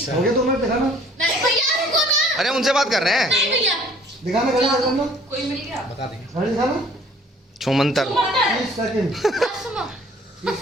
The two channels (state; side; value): normal; both; correlation 0.55